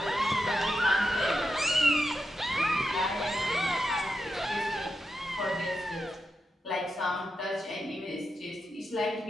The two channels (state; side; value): normal; both; correlation 0.87